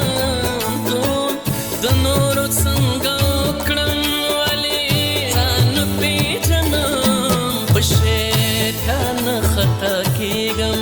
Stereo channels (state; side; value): identical; both; correlation 1.00